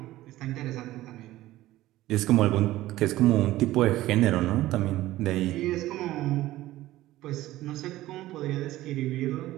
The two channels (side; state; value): left; quieter; 16.0 dB